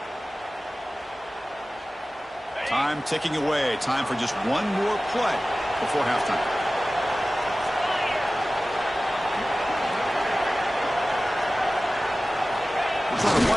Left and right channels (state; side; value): normal; both; correlation 0.96